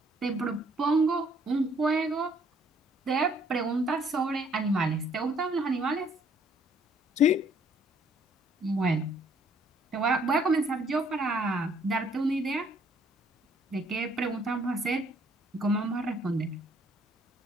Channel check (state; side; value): normal; both; correlation 0.64